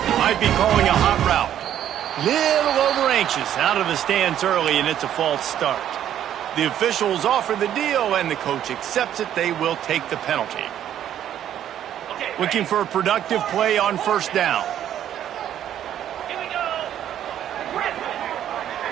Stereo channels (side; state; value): left; quieter; 10.8 dB